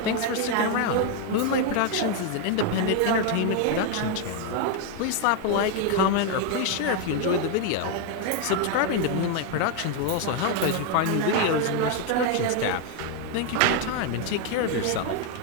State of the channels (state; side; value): different; both; correlation 0.01